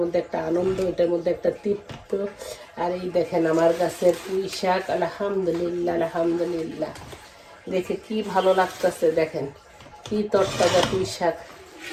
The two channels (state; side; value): identical; both; correlation 1.00